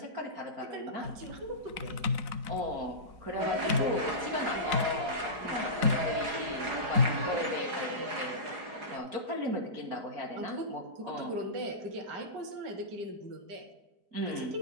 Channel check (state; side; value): late; left; 4.8 ms